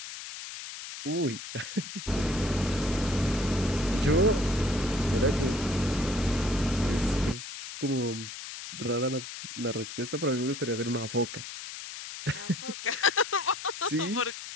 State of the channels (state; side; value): noise; left; hiss, 10 dB below the sound